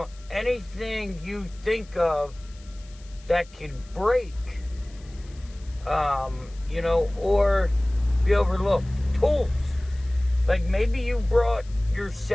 anything you think of that can break, or be overlooked. Tools. Like maybe you brought your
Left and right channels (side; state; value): left; noise; hiss, 26 dB below the sound